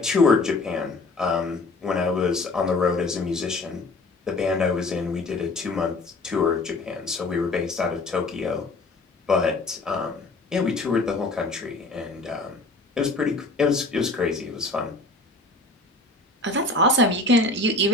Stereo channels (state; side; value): quieter; right; 3.2 dB